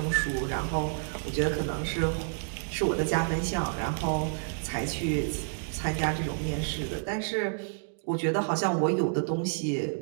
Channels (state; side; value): silent; left; digital silence